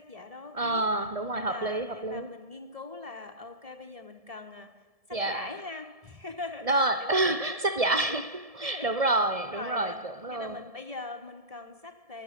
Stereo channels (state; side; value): late; left; 1.7 ms